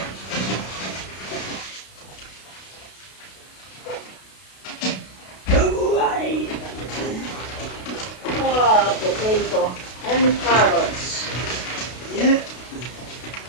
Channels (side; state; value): right; late; 32 ms